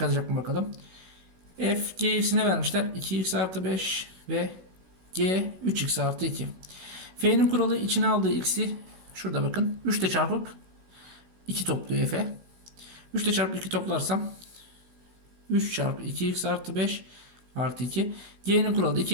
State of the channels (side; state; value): left; late; 16 ms